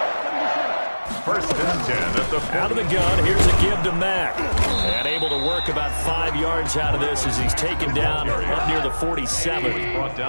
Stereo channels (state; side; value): inverted; both; correlation -1.00